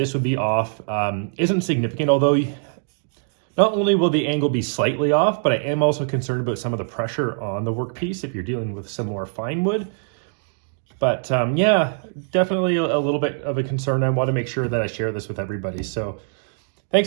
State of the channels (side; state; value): left; silent; digital silence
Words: would be off isn't significant, although not only will the angle be slightly off, but I am also concerned about some of the pressure on the workpiece if you're dealing with some more fine wood. But yeah, definitely a little bit of a concern. I want to make sure that I share this with everybody. So